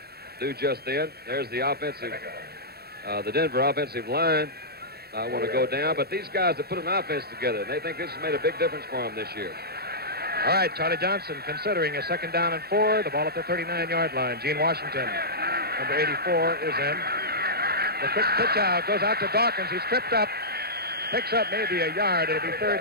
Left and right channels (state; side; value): late; left; 0.46 ms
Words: do just then. There's the offensive, the Denver offensive line. I want to go down, but these guys have put an offense together, and they think this has made a big difference for them this year. All right, Charlie Johnson considering a 2nd down and 4. The ball at the 39-yard line. Gene Washington, number 84, is in. The quick pitch out goes out to Dawkins. He's tripped up, picks up maybe a yard. It'll be